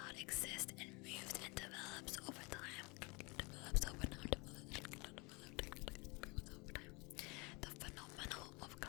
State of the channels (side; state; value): right; quieter; 28.0 dB